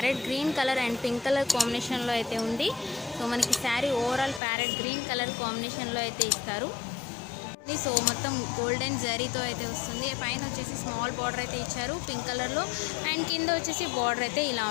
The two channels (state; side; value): drops out; right; at 4.4 s